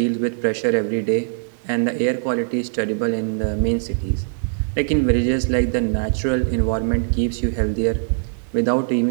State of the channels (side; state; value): left; silent; 64 dB below the other